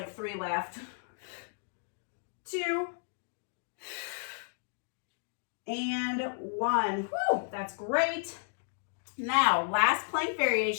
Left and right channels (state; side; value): silent; right; digital silence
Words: 3 left. 2, and 1. Woo, that's great. Now, last plank